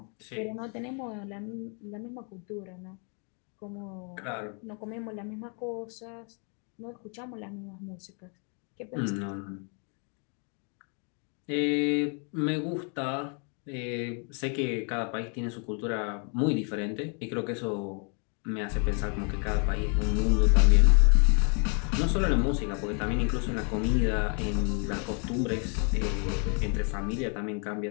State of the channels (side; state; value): right; quieter; 38.9 dB